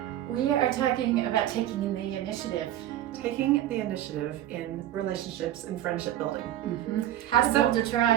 We are talking about taking the initiative. Taking the initiative in relationships and friendship building. How to build a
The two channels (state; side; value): quieter; left; 12.5 dB